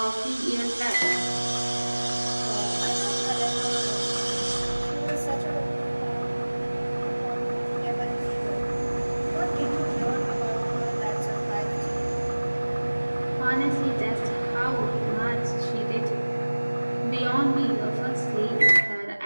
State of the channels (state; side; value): inverted; both; correlation -1.00